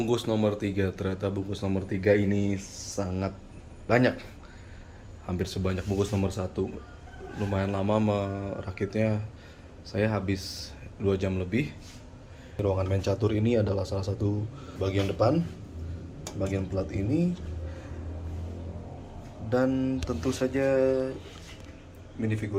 nomor 3. Ternyata bungkus nomor 3 ini sangat banyak. Hampir sebanyak bungkus nomor 1. Lumayan lama merakitnya. Saya habis 2 jam lebih. Ruangan main catur ini adalah salah satu bagian depan. Bagian plat ini. Dan tentu saja minifigur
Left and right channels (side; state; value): both; identical; correlation 1.00